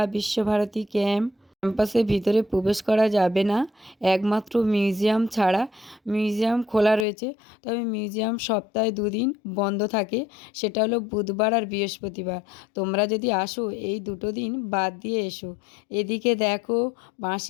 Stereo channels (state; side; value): drops out; right; at 7.1 s